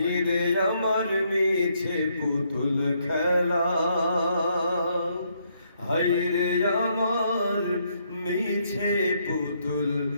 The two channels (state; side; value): inverted; both; correlation -0.73